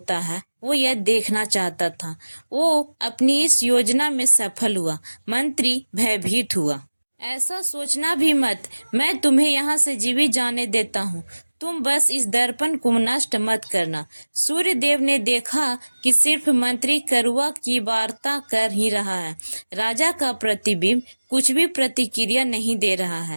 है वो यह देखना चाहता था। वो अपनी इस योजना में सफल हुआ। मंत्री भयभीत हुआ। ऐसा सोचना भी मत, मैं तुम्हें यहाँ से जीवित जाने देता हूँ। तुम बस इस दर्पण को नष्ट मत करना। सूर्यदेव ने देखा कि सिर्फ मंत्री करुआ की वार्ता कर ही रहा है। राजा का प्रतिबिंब कुछ भी प्रतिक्रिया नहीं दे रहा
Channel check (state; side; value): inverted; both; correlation -1.00